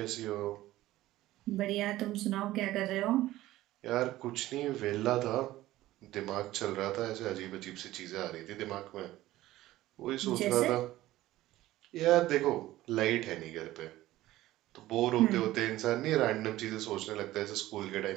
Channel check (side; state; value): left; quieter; 15.8 dB